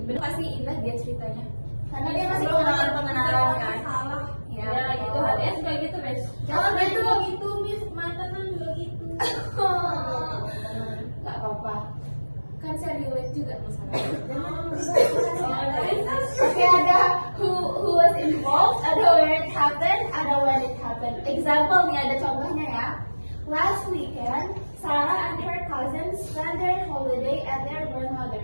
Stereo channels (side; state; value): both; inverted; correlation -1.00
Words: Bener pasti indah dia ceritanya. Karena dia masih pengenalan kan. Ya, gitu. HTS juga gitu, Miss. Jangan gitu, Miss. Mantenan juga gitu. Gak apa-apa. Kan saya relate juga masalahnya. Oke, ada who was involved, ada where it happened, ada when it happened. Example nih, ada contohnya ya. Last weekend, Sarah and her cousins spent their holiday at their